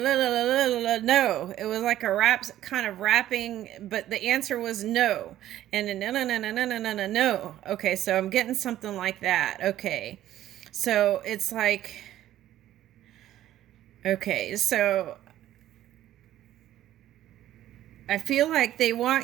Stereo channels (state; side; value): quieter; left; 13.0 dB